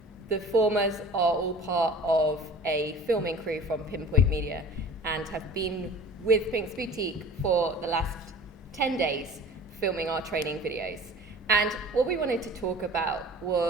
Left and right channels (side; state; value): both; normal; correlation 0.43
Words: The formers are all part of a filming crew from Pinpoint Media and have been with Pinks Boutique for the last 10 days filming our training videos. And what we wanted to talk about